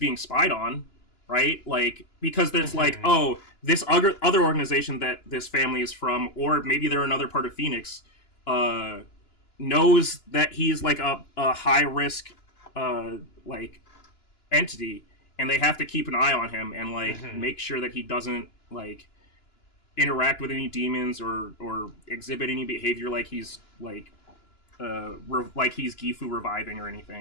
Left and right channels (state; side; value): late; right; 2.9 ms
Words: spied on, right? Like, because there's like, this other organization that this family is from, or maybe they're another part of Phoenix, knows that he's like a high risk like entity, and they have to keep an eye on him and like make sure that he doesn't like interact with any demons or exhibit any behavior like he's like like he's Gifu reviving or